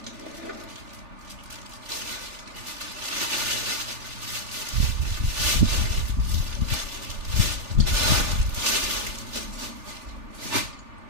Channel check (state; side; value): late; left; 3.4 ms